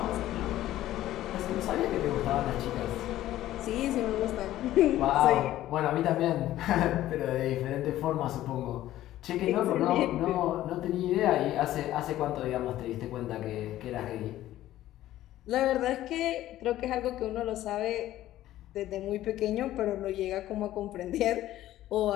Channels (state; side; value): quieter; right; 14.1 dB